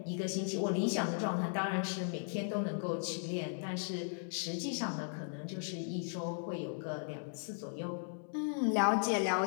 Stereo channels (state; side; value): silent; right; 53 dB below the other